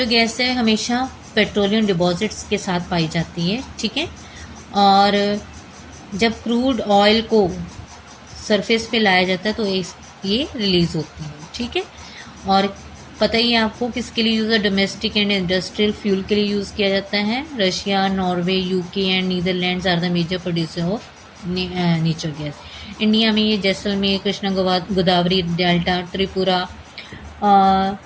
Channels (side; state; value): both; identical; correlation 1.00